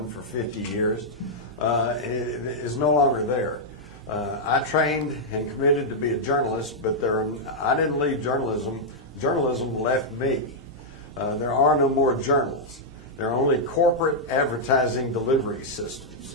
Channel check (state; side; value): normal; both; correlation -0.06